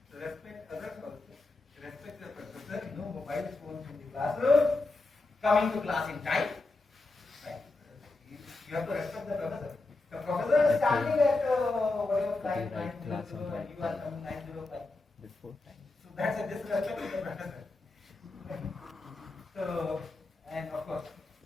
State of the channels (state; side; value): quieter; right; 3.3 dB